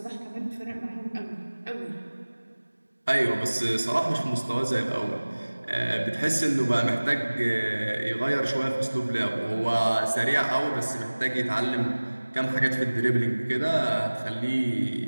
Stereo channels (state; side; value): inverted; both; correlation -1.00